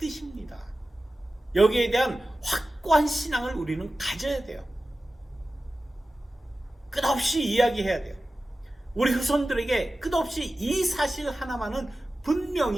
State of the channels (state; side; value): normal; both; correlation 0.95